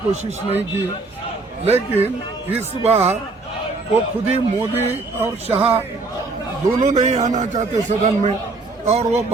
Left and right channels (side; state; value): left; quieter; 3.6 dB